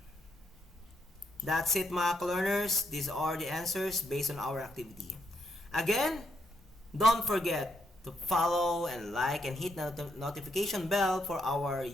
That's it mga ka-learners. These are the answers based on our activity. Again, don't forget to follow and like and hit the notification bell for our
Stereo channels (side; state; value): both; normal; correlation 0.77